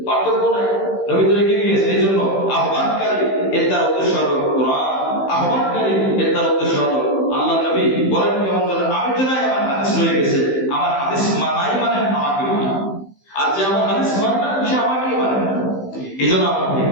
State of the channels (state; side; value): late; right; 15 ms